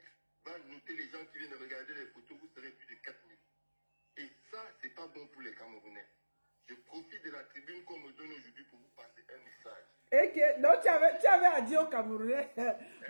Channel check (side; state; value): both; inverted; correlation -1.00